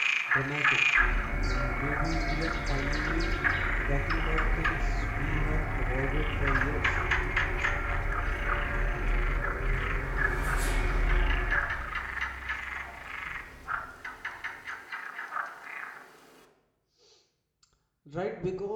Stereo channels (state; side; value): identical; both; correlation 1.00